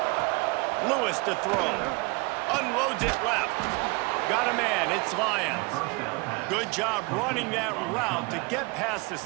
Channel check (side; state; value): left; quieter; 27.6 dB